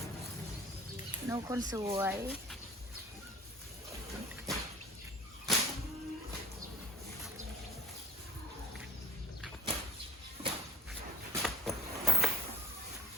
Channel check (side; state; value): both; normal; correlation 0.46